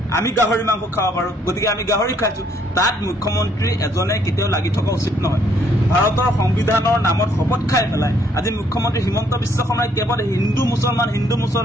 আমি গাহৰি মাংস খাব পাৰো গতিকে আমি গাহৰি খাইছো তাত মুখ্যমন্ত্ৰী এজনে কেতিয়াও লাগি থকা উচিত নহয় ভাৰতৰ সংবিধানৰ নামত শপত খাই পেলাই আজি মুখ্যমন্ত্ৰী হিমন্ত বিশ্ব শৰ্মাই কেৱল হিন্দু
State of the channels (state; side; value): normal; both; correlation 0.67